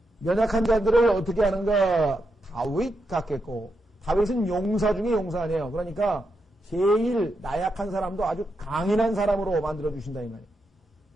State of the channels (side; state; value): both; normal; correlation 0.84